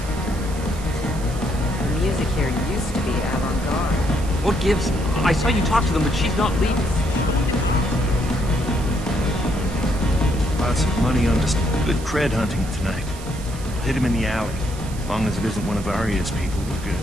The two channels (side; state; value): right; noise; hiss, 16 dB below the sound